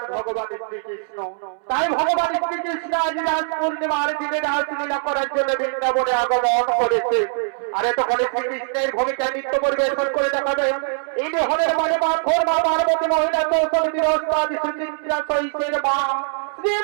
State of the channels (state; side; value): silent; left; 64 dB below the other